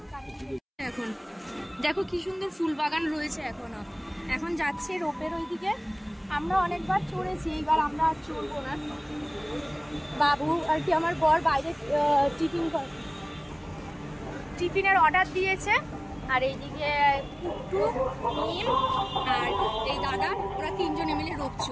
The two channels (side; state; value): both; identical; correlation 1.00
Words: এখন দেখো কি সুন্দর ফুল বাগান রয়েছে এখনো। এখন যাচ্ছে রোপের ওইদিকে। আমরা অনেকবার চড়েছি, এইবার আমরা আর চড়বো না। বাবু আর কি আমার বর বাইরে টিফিনের অর্ডার দিয়েছে। আর এইদিকে পুট্টু, মিম আর এই দাদা, ওরা তিনজনে মিলে রোপ